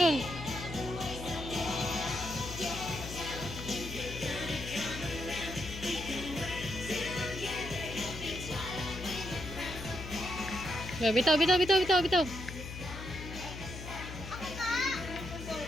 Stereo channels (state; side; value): noise; left; hum, 9 dB below the sound